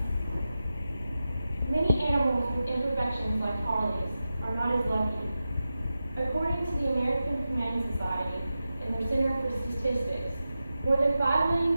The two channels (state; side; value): inverted; both; correlation -0.92